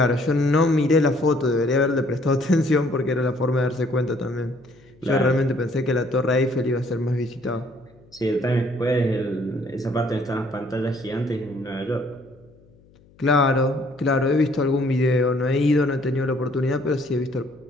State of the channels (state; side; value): noise; left; hum, 29 dB below the sound